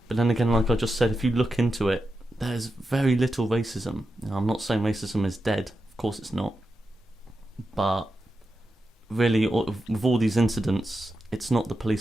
But then again, like I just said, if you look into it, there's very little racism. I'm not saying racism is dead. Of course it's not. But really, with all these incidents, it's not the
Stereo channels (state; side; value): normal; both; correlation 0.89